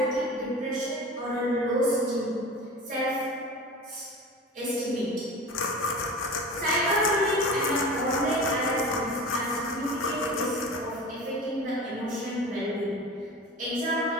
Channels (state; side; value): normal; both; correlation 0.34